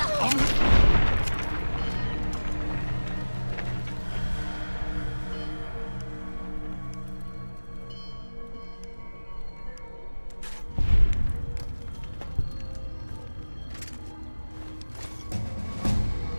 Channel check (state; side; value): inverted; both; correlation -1.00